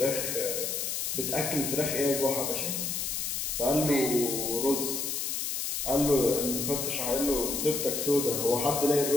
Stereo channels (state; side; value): noise; left; hiss, 2 dB below the sound